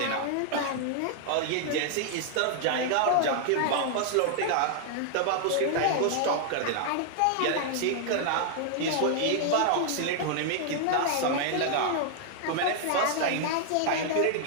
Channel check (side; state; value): both; different; correlation 0.00